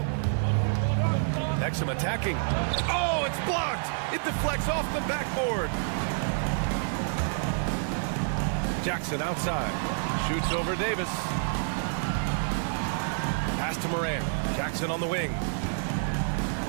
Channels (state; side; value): silent; left; 59 dB below the other